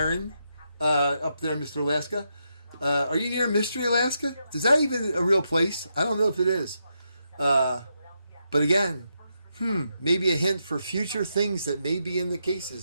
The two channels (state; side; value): inverted; both; correlation -0.83